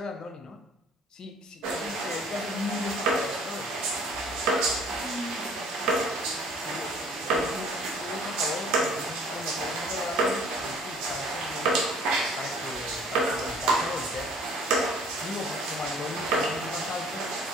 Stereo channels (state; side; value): normal; both; correlation 0.54